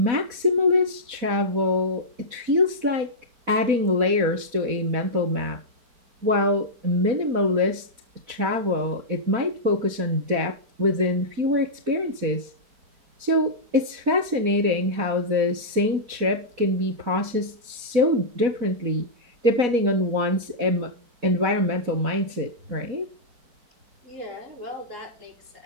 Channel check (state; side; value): late; left; 4.1 ms